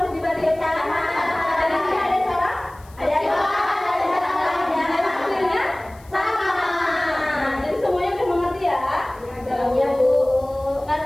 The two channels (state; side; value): noise; left; hiss, 27 dB below the sound